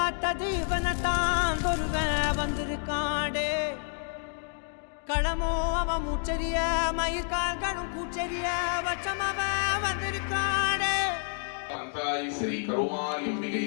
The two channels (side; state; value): right; silent; 58 dB below the other